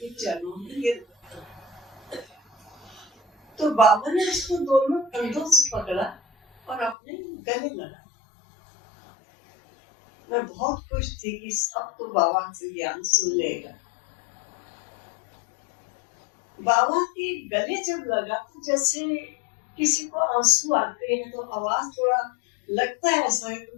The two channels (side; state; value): right; drops out; at 7.0 s